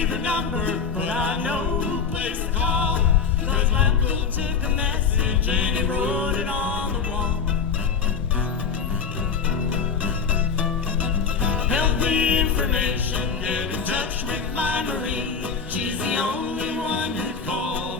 her number, but I know who place to call. Cause my uncle took a message and he wrote it on the wall. Help me information, get in touch with my Marie. She's the only one who'd call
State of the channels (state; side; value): quieter; right; 6.0 dB